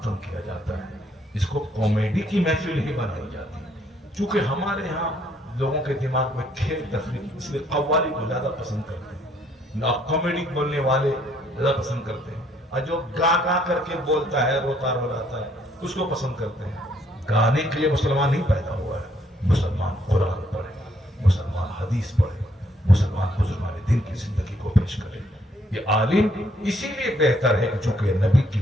کیا جاتا ہے. اس کو کامیڈی کی محفل ہی بنائی جاتی ہے. چونکہ ہمارے یہاں لوگوں کے دماغ میں کھیل تفریح, اس لیے قوالی کو زیادہ پسند کرتے ہیں, کامیڈی بولنے والے زیادہ پسند کرتے ہیں. اور جو گا گا کر کے بولتا ہے, روتا رولاتا ہے, اس کو پسند کرتے ہیں. گانے کے لیے مسلمان نہیں پیدا ہوا ہے. مسلمان قرآن پڑھے, مسلمان حدیث پڑھے, مسلمان بزرگان دین کی زندگی کو پیش کرے. یہ عالم اسی لیے بہتر ہے کہ چونکہ نبی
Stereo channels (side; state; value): both; normal; correlation 0.68